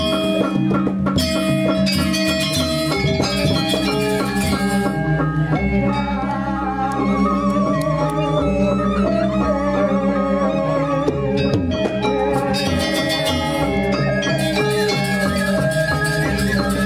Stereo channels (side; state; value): both; identical; correlation 1.00